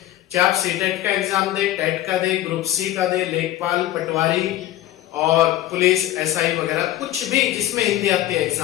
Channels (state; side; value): quieter; right; 14.1 dB